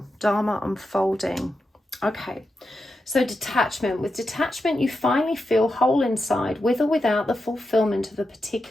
Dharma unfolding. Okay, so detachment. With detachment, you finally feel whole inside, with or without the fulfillment of a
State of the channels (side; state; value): both; normal; correlation 0.88